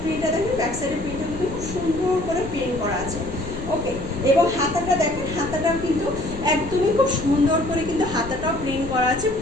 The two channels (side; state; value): left; noise; rumble, 11 dB below the sound